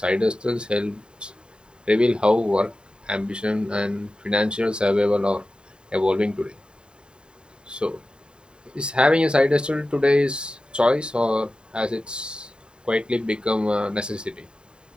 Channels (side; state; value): left; late; 0.050 ms